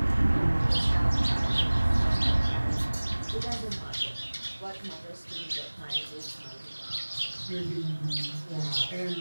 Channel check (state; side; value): inverted; both; correlation -1.00